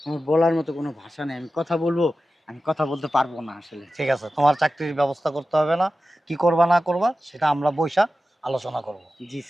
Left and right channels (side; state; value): both; normal; correlation 0.94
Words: আমার বলার মতো কোনো ভাষা নেই। আমি কথা বলবো, আমি কথা বলতে পারবো না আসলে। ঠিক আছে, তোমার চাকরির ব্যবস্থা করতে হবে না, কি করবা না করবা সেটা আমরা বৈশা আলোচনা করব। জি